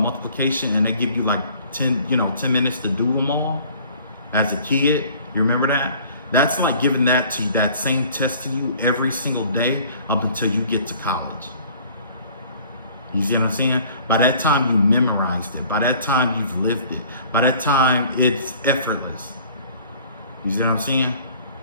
and they give you like 10 minutes to do them all as a kid. You remember that? That's like giving that same test to you every single day up until you get to college. You see what I'm saying? By that time you memorized it. By that time you've lived it. By that time it's effortless. You see what I'm saying?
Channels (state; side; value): inverted; both; correlation -0.52